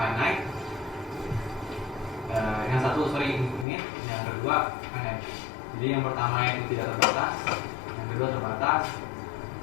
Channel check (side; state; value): right; drops out; at 3.7 s